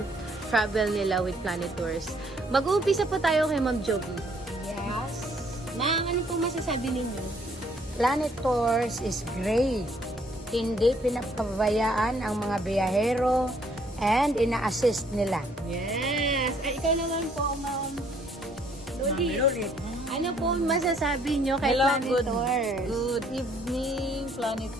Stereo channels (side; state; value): both; normal; correlation 0.65